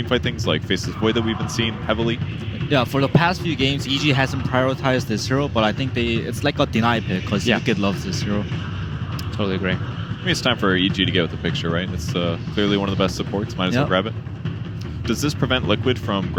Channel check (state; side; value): identical; both; correlation 1.00